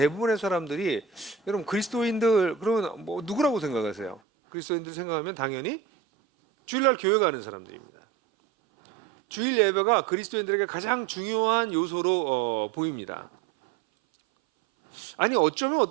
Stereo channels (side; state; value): left; drops out; at 4.2 s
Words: 사람들이 여러분 그리스도인들 그러면 뭐 누구라고 생각하세요? 그리스도인들 생각하면 당연히 주일날 교회 가는 사람들입니다. 주일 예배가 그리스도인들에게 가장 중요한 요소로 보입니다. 아니 어쩌면